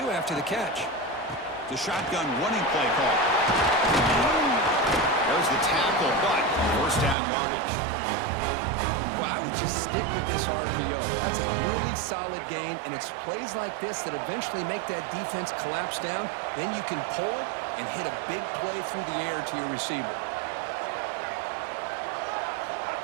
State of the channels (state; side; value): drops out; left; at 7.2 s